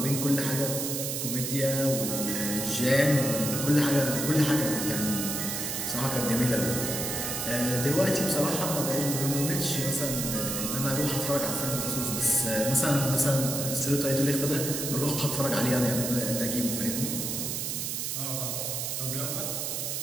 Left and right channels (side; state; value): right; noise; hiss, 2 dB below the sound